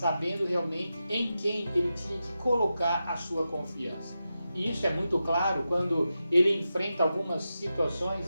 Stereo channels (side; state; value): both; inverted; correlation -0.90